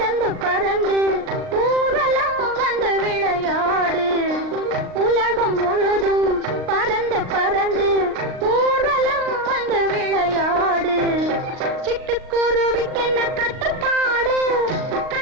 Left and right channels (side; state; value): left; late; 39 ms